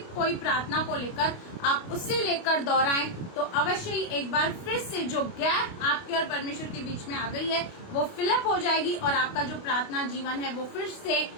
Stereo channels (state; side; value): late; right; 29 ms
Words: कोई प्रार्थना को लेकर आप उसे लेकर दोहराएं, तो अवश्य ही एक बार फिर से जो गैप आपके और परमेश्वर के बीच में आ गई है वो फिलअप हो जाएगी और आपका जो प्रार्थना जीवन है वो फिर से